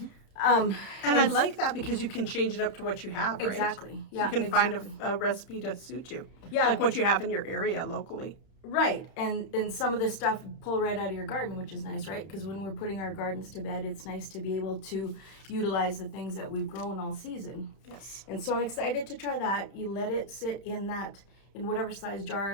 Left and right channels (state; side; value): late; right; 31 ms